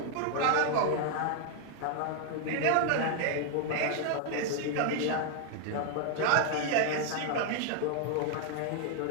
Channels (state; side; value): different; both; correlation 0.00